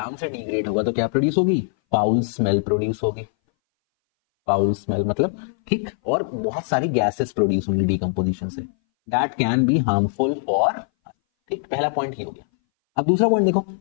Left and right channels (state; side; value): silent; right; 60 dB below the other